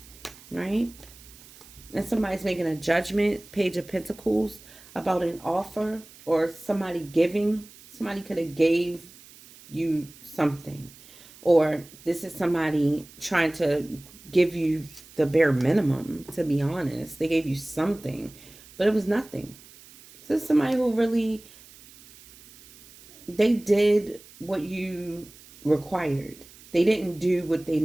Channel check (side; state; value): right; noise; hiss, 22 dB below the sound